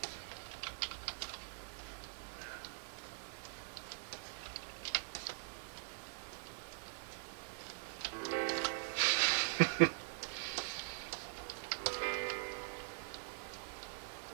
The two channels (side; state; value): left; silent; digital silence